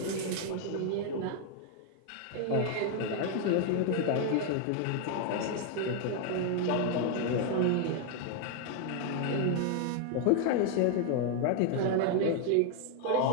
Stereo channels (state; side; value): different; both; correlation 0.00